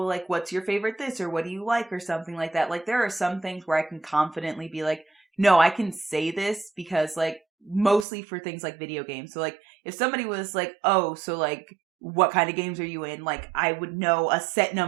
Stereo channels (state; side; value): drops out; left; at 8.1 s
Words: like, what's your favorite this or what do you like or something like that. Like, there are some things where I can confidently be like, no, I can say this because, like, mostly for things like video games. So, like, if somebody was like, oh, so, like, what kind of games are you in? Like, I would know a set